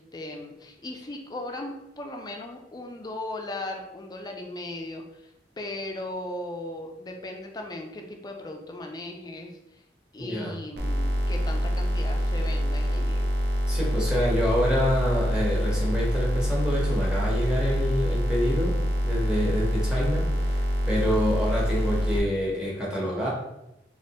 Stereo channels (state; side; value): normal; both; correlation 0.85